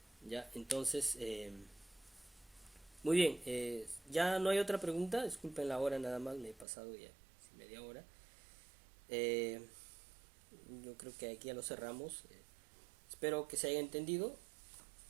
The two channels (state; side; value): drops out; left; at 6.7 s